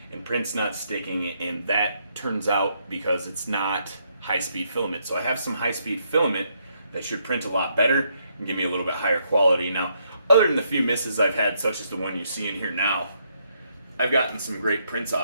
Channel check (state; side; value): inverted; both; correlation -0.75